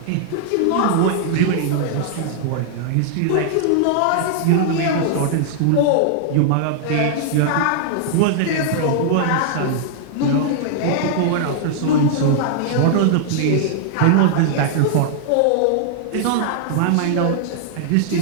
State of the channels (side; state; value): both; different; correlation -0.01